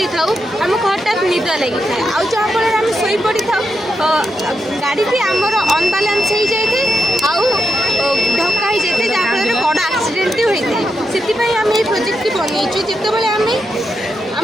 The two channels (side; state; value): both; normal; correlation 0.84